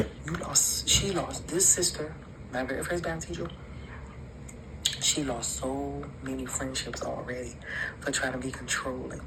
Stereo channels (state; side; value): identical; both; correlation 1.00